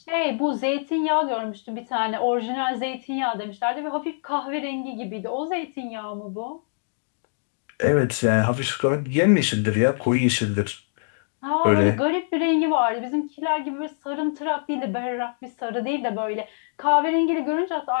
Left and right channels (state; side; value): silent; right; digital silence